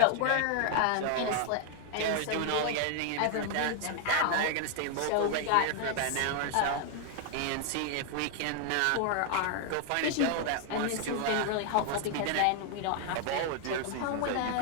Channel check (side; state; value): both; different; correlation 0.00